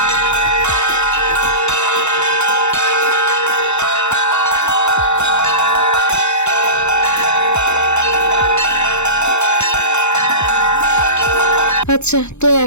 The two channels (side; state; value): right; late; 0.82 ms